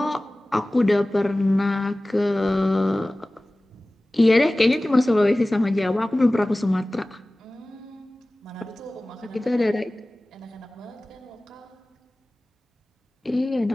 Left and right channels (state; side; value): normal; both; correlation 0.98